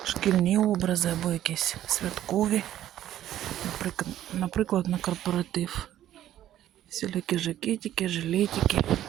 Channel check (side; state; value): left; quieter; 12.4 dB